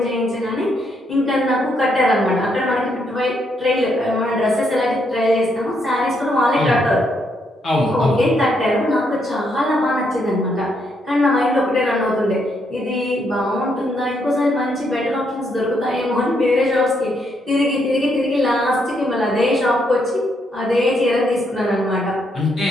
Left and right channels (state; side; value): normal; both; correlation 0.76